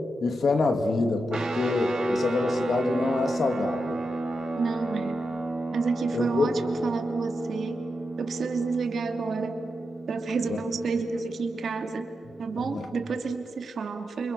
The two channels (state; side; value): normal; both; correlation 0.87